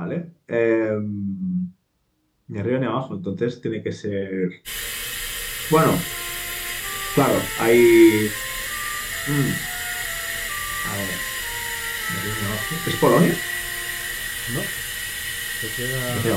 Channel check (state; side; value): identical; both; correlation 1.00